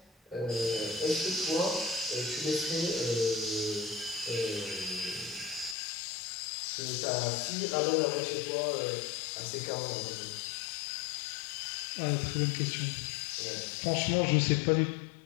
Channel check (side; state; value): right; drops out; at 5.8 s